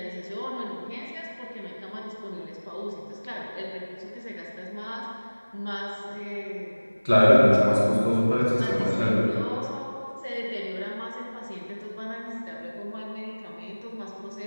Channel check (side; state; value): both; inverted; correlation -1.00